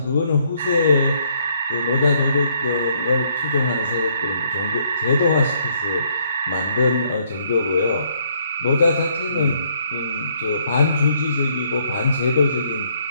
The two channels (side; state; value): both; inverted; correlation -0.68